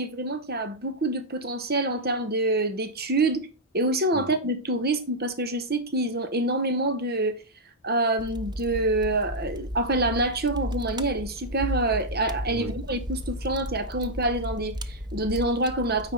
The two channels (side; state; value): both; normal; correlation -0.04